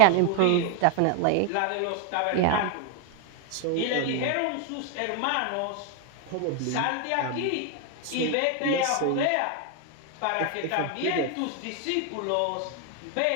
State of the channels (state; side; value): different; both; correlation 0.00